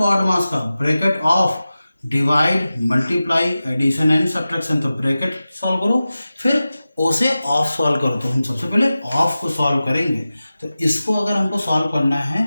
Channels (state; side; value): inverted; both; correlation -0.95